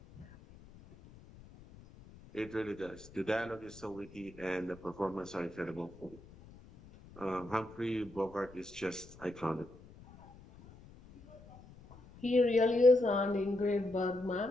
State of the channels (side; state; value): left; noise; rumble, 21 dB below the sound